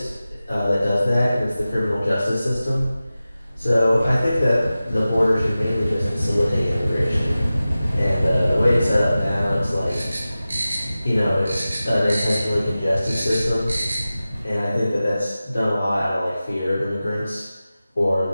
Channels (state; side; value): inverted; both; correlation -0.95